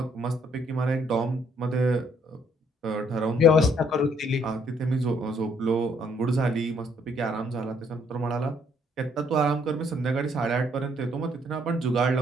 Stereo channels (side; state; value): both; normal; correlation 0.66